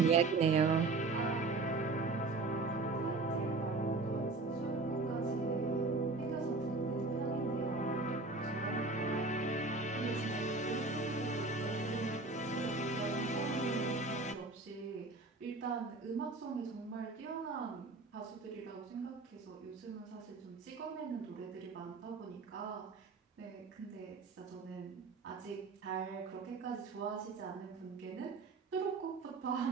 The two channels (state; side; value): quieter; left; 3.6 dB